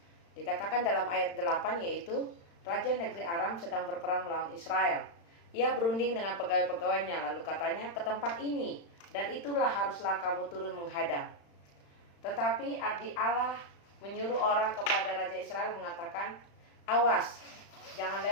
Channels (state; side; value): late; right; 35 ms